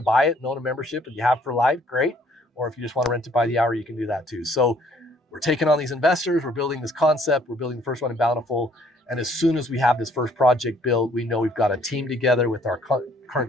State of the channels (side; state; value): both; normal; correlation 0.62